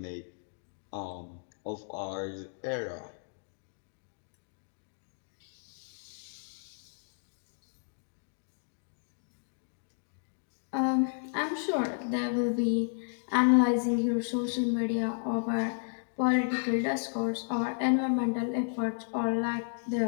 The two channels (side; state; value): right; silent; digital silence